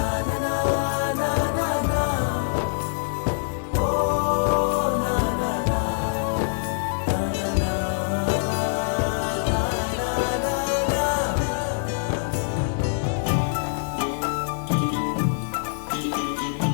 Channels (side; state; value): right; silent; 61 dB below the other